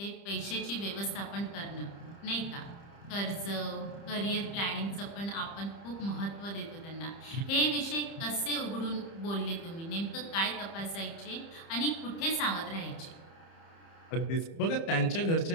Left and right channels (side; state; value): right; late; 30 ms